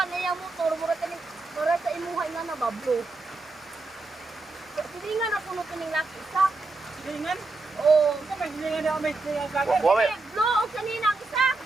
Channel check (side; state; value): left; quieter; 3.4 dB